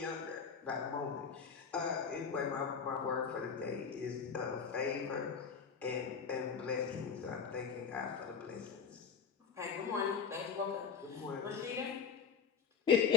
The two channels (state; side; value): quieter; right; 6.2 dB